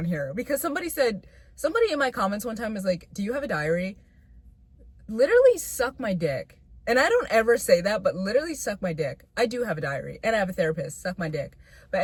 here because somebody in my comments one time was like, do you have a diary? Literally suck my dick. And I don't ever say that, but literally suck my dick. I do have a diary and I have a therapist. Suck my dick. But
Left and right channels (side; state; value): both; identical; correlation 1.00